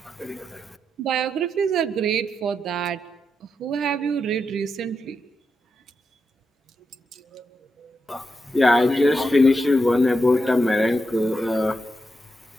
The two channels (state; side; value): normal; both; correlation 0.85